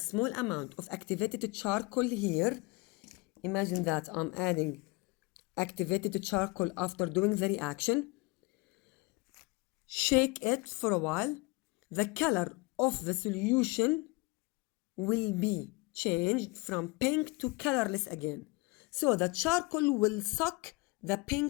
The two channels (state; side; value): quieter; right; 25.6 dB